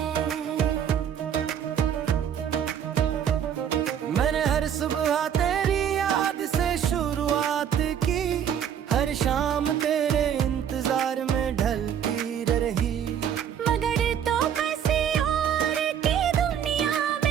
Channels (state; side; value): quieter; left; 8.9 dB